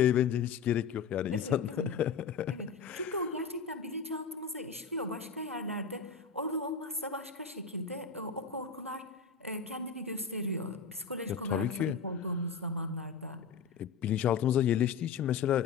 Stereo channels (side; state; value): right; quieter; 6.2 dB